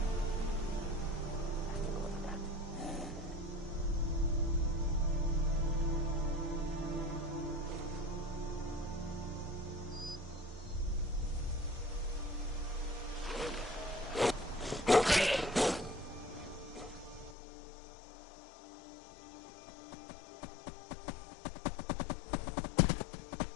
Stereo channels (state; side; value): drops out; right; at 17.4 s